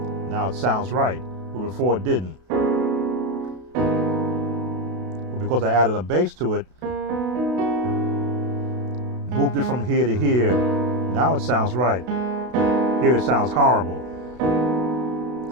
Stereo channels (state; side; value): late; left; 32 ms